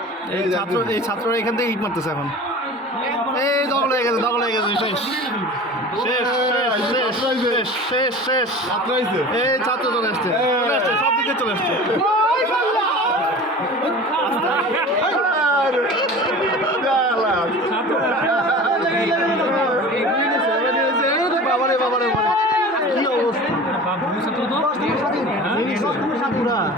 এই ছাত্ররা এখান থেকে ইট মারতেছে এখন এই দখল হয়ে গেছে শেষ শেষ শেষ শেষ শেষ শেষ আত্রাইছে এই ছাত্র চলে আসছে সব দিকে চলে আসছে বাবারে বাবারে কি অবস্থা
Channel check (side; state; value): both; normal; correlation 0.38